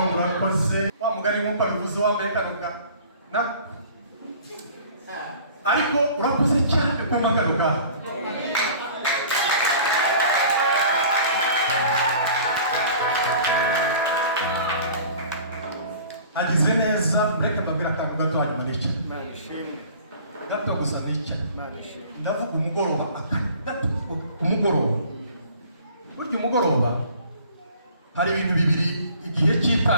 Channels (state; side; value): inverted; both; correlation -0.47